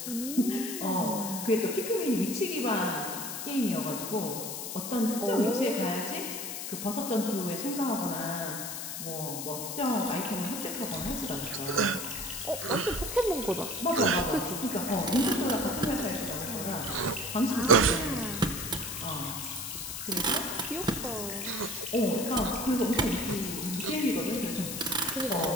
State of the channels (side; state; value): left; noise; hiss, 6 dB below the sound